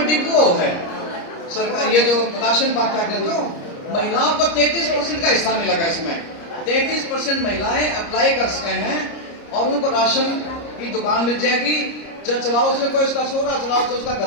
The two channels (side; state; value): right; late; 30 ms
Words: डिपो है सरकार, ये जो राशन बांटा कर लो, महिलाओं को 33% का हिस्सा मिलेगा। इसमें 33% महिलाएं अप्लाई कर सके हैं और उनको राशन की दुकान मिल जाएगी। चलाओ उसमें कोई उसका छोरा चलाओ तो उसका